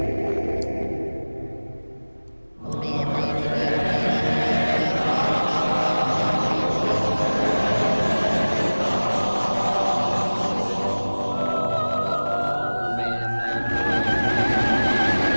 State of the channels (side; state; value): both; inverted; correlation -1.00